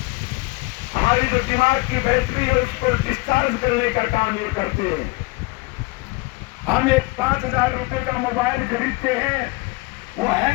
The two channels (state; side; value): quieter; right; 24.7 dB